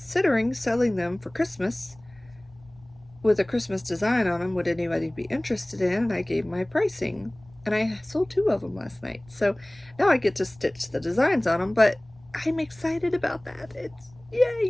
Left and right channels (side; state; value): left; noise; rumble, 27 dB below the sound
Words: selling them for Christmas with a Christmas design on them. Would anybody be interested in? And I gave my pricing. And I sold 2 of them last night. So now I get to stitch the designs on them, but I'm excited about that. It's